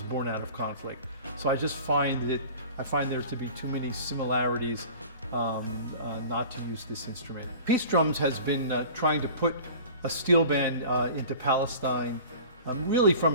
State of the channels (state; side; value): inverted; both; correlation -0.41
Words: born out of conflict. So I just find there to be too many similarities not to use this instrument. Peace Drums has been trying to put a steel band into Palestine really from